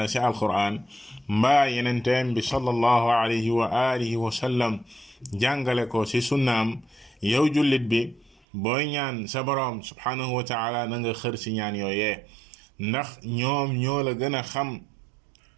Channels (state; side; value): drops out; left; at 8.4 s